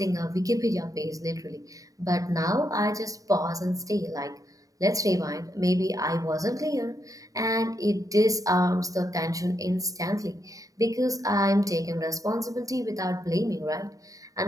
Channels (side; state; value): left; late; 0.17 ms